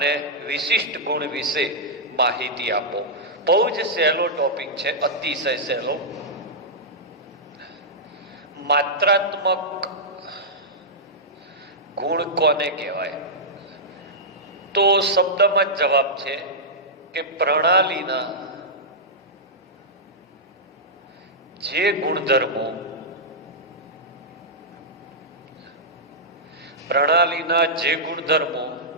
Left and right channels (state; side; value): normal; both; correlation -0.11